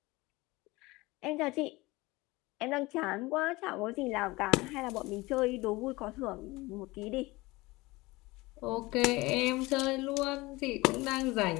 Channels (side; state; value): right; quieter; 21.6 dB